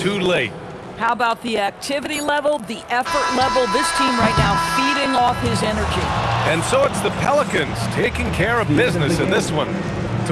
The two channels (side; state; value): both; identical; correlation 1.00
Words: late. How about the activity level, the effort level? This team right now feeding off his energy. And so it's the Pelicans taking care of business in this one.